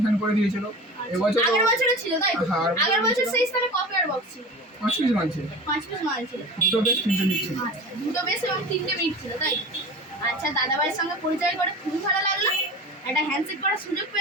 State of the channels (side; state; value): both; normal; correlation 0.33